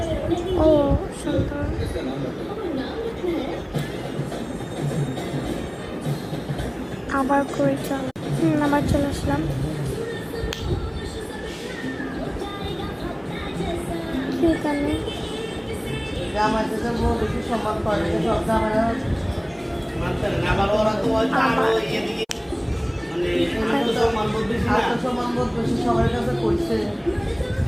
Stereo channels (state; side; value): identical; both; correlation 1.00